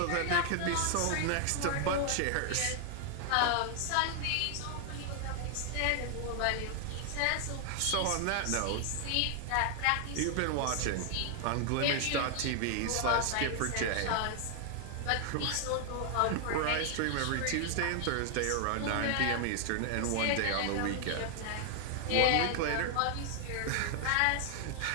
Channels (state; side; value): different; both; correlation 0.00